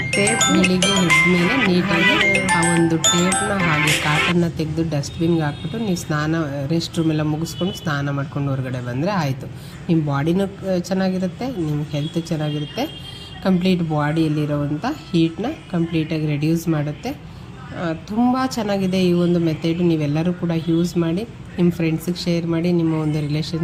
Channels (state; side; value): identical; both; correlation 1.00